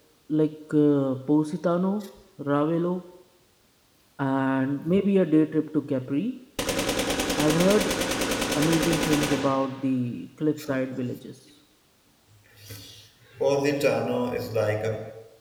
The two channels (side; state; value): both; identical; correlation 1.00